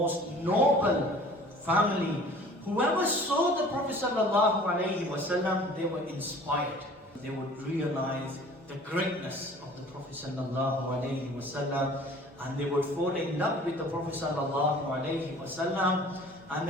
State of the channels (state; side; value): normal; both; correlation 0.48